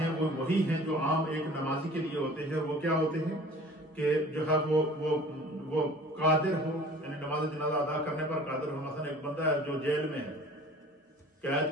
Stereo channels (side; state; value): both; normal; correlation 0.46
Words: وہ وہی ہیں جو عام ایک نمازی کے لیے ہوتے ہیں. وہ کیا ہوتے ہیں کہ جو ہے وہ قادر ہو، یعنی نماز جنازہ ادا کرنے پر قادر ہو. مثلا ایک بندہ ہے جو جیل میں ہے،